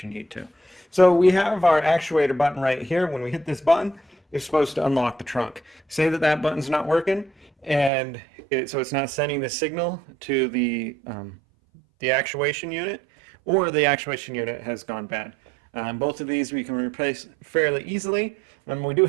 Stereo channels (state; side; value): drops out; left; at 7.9 s